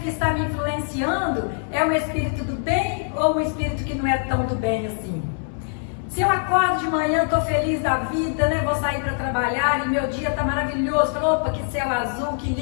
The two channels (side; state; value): right; silent; digital silence